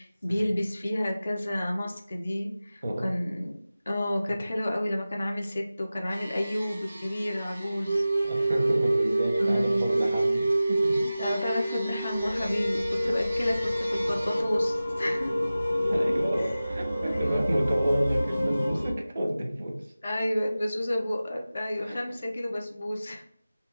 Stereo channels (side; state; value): both; inverted; correlation -0.96